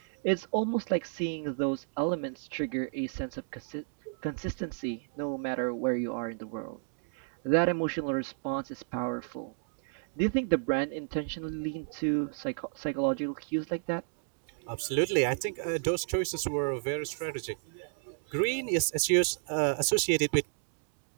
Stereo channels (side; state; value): left; silent; digital silence